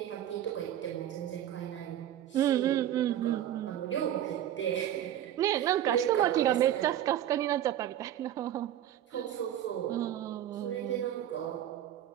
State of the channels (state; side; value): quieter; left; 11.4 dB